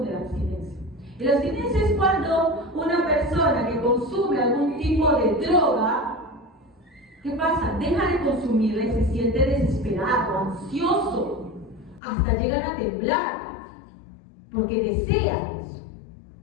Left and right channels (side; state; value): right; drops out; at 12.0 s